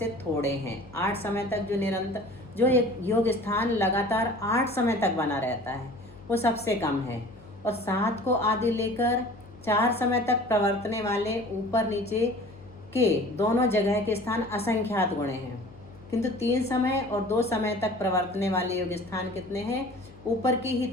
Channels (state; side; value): noise; left; hum, 21 dB below the sound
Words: थोड़े हैं। 8 समय तक जो एक योग स्थान लगातार 8 समय तक बना रहता है वो सबसे कम है। और 7 को आदि लेकर 4 समय तक प्रवर्तने वाले ऊपर नीचे के दोनों जगह के स्थान असंख्यात गुणे हैं, किंतु 3 समय और 2 समय तक प्रवर्तने वाले योग स्थान कितने हैं? ऊपर की ही